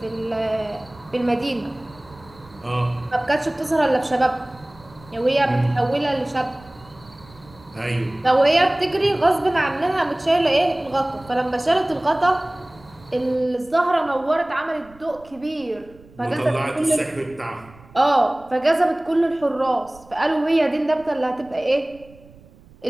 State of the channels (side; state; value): right; noise; rumble, 24 dB below the sound